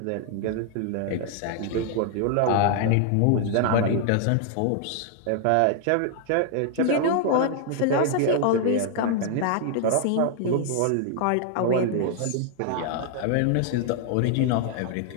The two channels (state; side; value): different; both; correlation 0.00